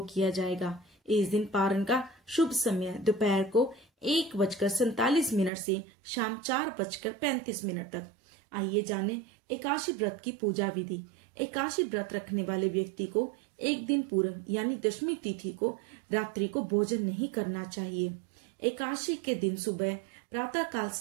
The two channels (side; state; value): left; drops out; at 5.5 s